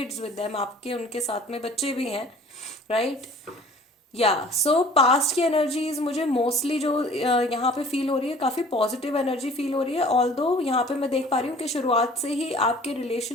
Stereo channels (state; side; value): normal; both; correlation 0.49